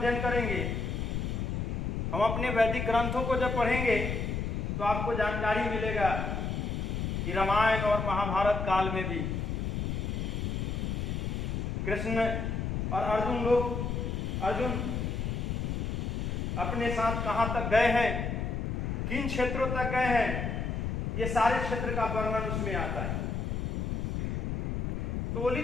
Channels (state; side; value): noise; left; rumble, 1 dB below the sound